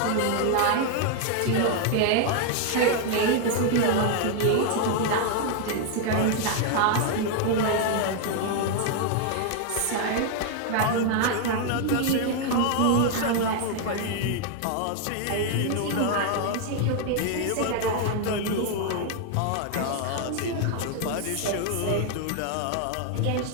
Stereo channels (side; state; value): both; different; correlation 0.00